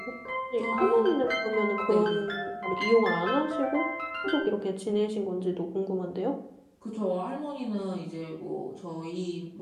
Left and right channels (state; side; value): identical; both; correlation 1.00